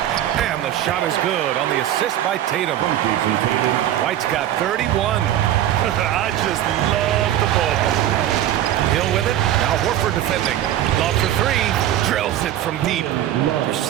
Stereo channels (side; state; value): left; quieter; 12.2 dB